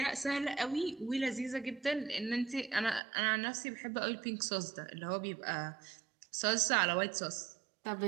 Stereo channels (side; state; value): left; drops out; at 3.0 s